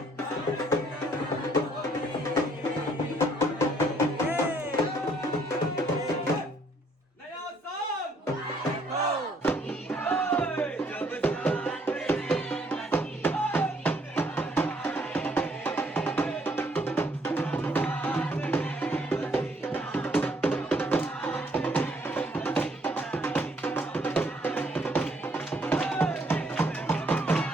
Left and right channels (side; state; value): both; normal; correlation 0.66